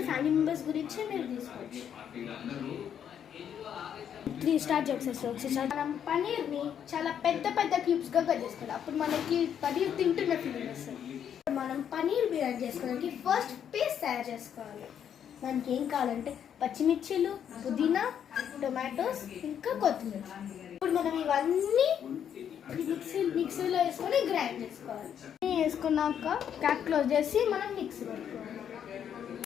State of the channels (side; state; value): right; quieter; 8.8 dB